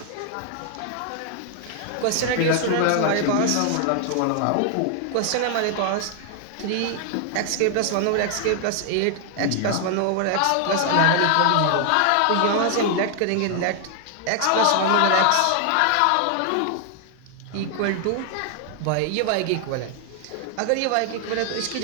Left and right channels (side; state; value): both; different; correlation 0.00